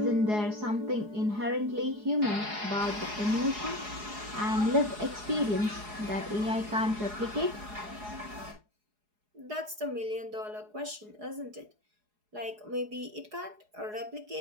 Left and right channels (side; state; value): left; late; 4.8 ms